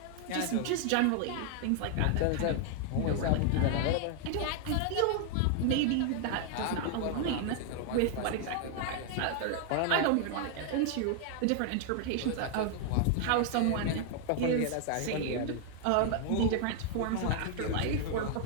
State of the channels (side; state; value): both; different; correlation 0.00